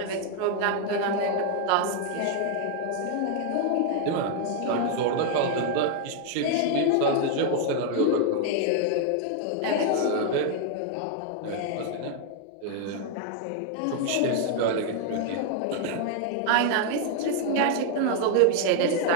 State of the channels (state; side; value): different; both; correlation 0.00